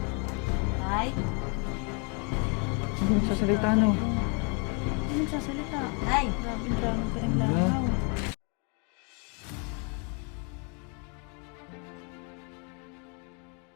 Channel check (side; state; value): right; quieter; 36.2 dB